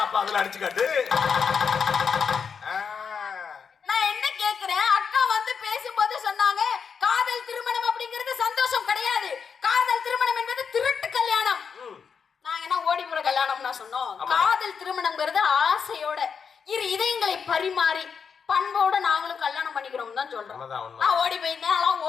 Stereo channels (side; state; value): right; quieter; 6.3 dB